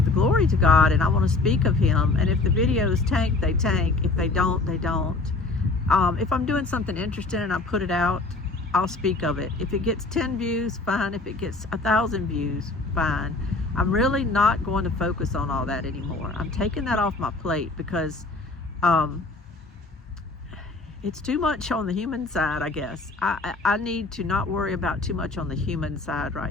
the glory to God, and I want to speak of Him, and if the videos tank, they tank. If they don't, they don't. If I'm doing something interesting and I put it out, I'll speak of it. If it gets 10 views, fine. If it gets 1,000 views, fine. I'm really not going to focus on all that anymore. I'm taking that off my plate because it's too much on the human side, I guess. I need to not worry about too much on the human side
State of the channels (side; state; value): right; quieter; 3.4 dB